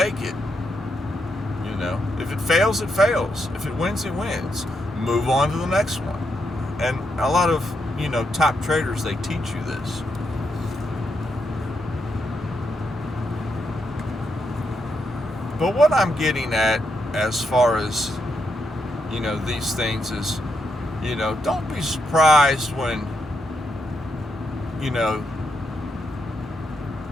it. If it fails, it fails. If it wins, it wins. Move on to the next one. And a lot of, top traders, they teach you this. But what I'm getting at as far as, these things is, don't be surprised when,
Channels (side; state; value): both; normal; correlation 0.81